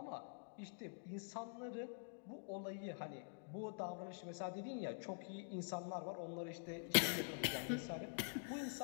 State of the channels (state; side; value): silent; right; digital silence